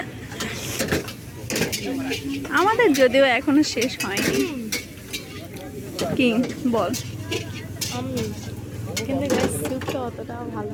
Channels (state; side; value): identical; both; correlation 1.00